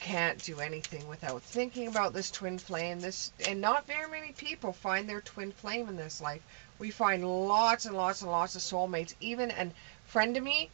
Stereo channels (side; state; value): left; silent; digital silence